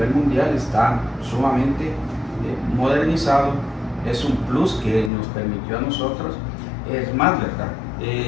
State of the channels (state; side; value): drops out; right; at 5.1 s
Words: mundial está sumamente modernizado, es un plus que nos permitió a nosotros. Es más, ¿verdad?